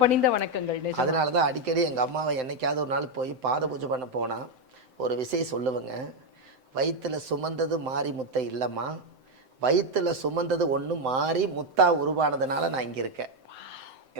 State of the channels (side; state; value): left; late; 7.8 ms